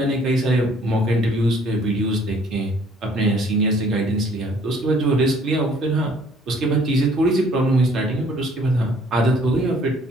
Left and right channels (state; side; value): normal; both; correlation 0.59